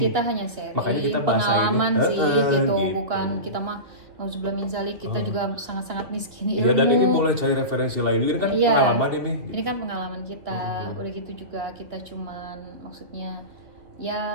Makanya kita bahasa pengalaman ini sih gitu. Bukan kita mah nauzubillah min zalik, kita juga sangat-sangat miskin ilmu. Iya, dan ini boleh cari referensi lain. Ini kan pengalaman ini. Ini kan pengalaman kita. Udah gitu juga kita cuman maksudnya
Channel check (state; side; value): late; left; 2.6 ms